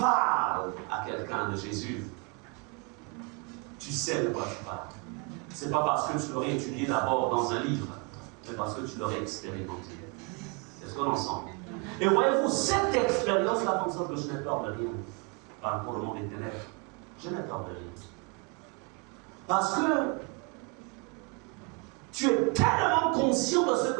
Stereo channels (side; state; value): left; quieter; 32.8 dB